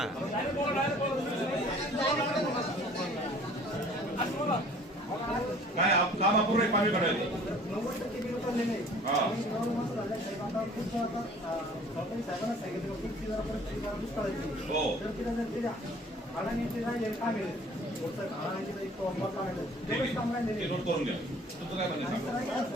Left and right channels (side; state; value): both; normal; correlation 0.51